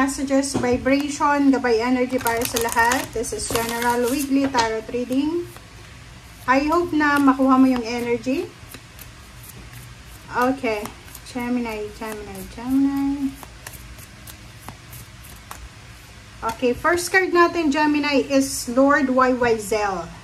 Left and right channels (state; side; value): identical; both; correlation 1.00